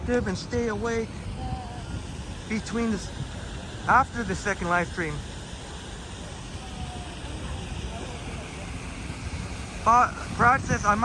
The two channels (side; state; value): both; identical; correlation 1.00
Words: and stay awake between this, after the second live stream? Brad says, I